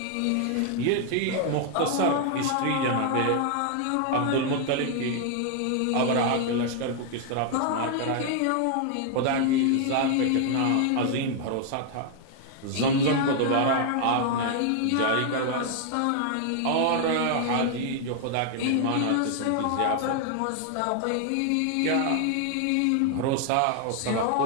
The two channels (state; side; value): different; both; correlation 0.00